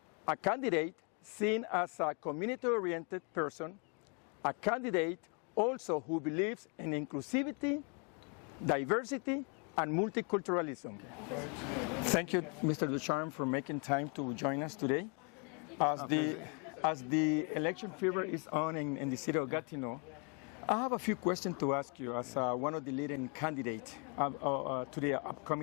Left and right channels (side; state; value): right; quieter; 35.2 dB